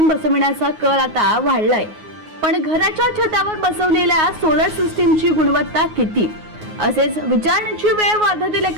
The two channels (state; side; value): late; left; 9.5 ms